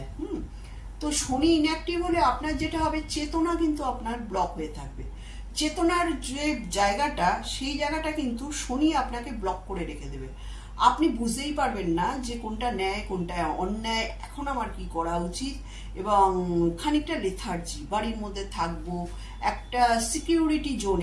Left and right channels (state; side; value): identical; both; correlation 1.00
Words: তো শনি ইনঅ্যাক্টিভ হলে আপনার যেটা হবে, চেতনা কিন্তু আপনার ব্লক হয়ে থাকবে। চেতনার যে জায়গাটা, সেই জায়গাটা কিন্তু শনি আপনাকে ব্লক করে রেখে দেবে। আপনি বুঝতেই পারবেন না যে কোনটা ন্যায় কোনটা অন্যায়, এখন আমার কি করা উচিত, এবং খানিকটা লেথার্জি, বাড়ির মধ্যে থাকবো, একটা সিকিউরিটি